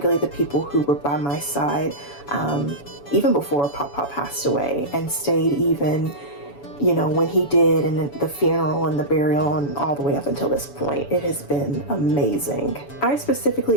the people who were by my side even before PopPop passed away, and stayed even when he did, and the funeral and the burial and all the way up until this point. It has been amazing. I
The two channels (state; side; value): late; right; 7.0 ms